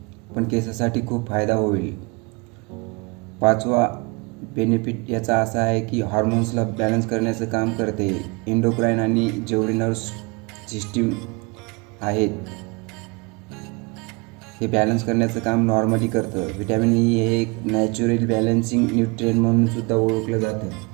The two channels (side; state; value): left; quieter; 28.8 dB